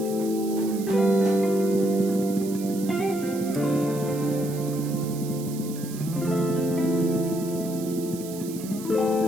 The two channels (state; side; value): noise; right; hiss, 15 dB below the sound